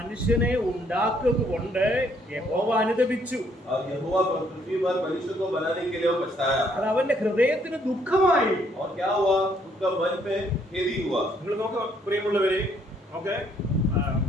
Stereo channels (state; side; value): normal; both; correlation 0.68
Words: ഉണ്ടാക്കുക കൊണ്ട് യഹോവ അനുതപിച്ചു. और यहोवा पृथ्वी पर मनुष्य को बनाने के लिए वो पछताया। അത് അവന്റെ ഹൃദയത്തിന് ദുഃഖമായി. और क्या हुआ, उसका मन पे खेदी हुआ। നിങ്ങൾ നോക്ക് പ്രിയമുള്ളവരെ, നോക്ക്,